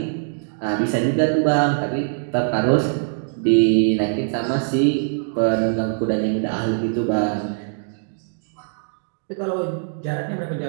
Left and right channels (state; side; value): silent; left; digital silence